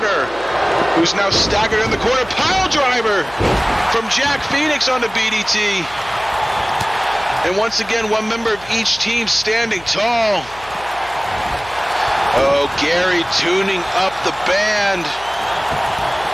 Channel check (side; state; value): left; noise; hum, 22 dB below the sound